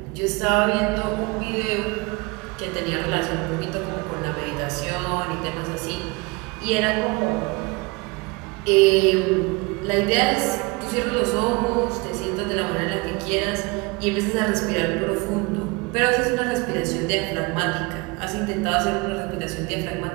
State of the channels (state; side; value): quieter; left; 26.3 dB